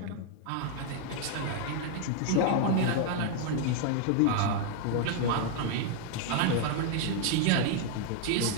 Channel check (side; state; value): both; different; correlation 0.00